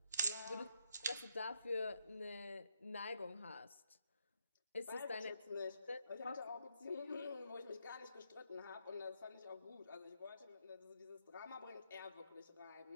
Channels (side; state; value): both; inverted; correlation -0.77